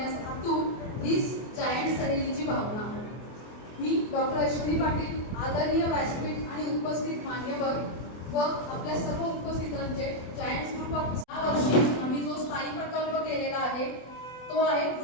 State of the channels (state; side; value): late; right; 24 ms